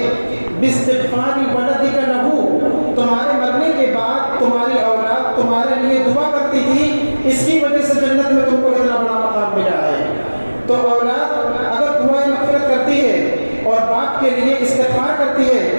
باستغفار ولدک لہ, تمہارے مرنے کے بعد تمہاری اولاد تمہارے لیے دعا کرتی تھی, اس کی وجہ سے جنت میں تم کو اتنا بڑا مقام ملا ہے. تو اولاد اگر دعائیں مغفرت کرتی ہے اور باپ کے لیے استغفار کرتی ہے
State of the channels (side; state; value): both; inverted; correlation -1.00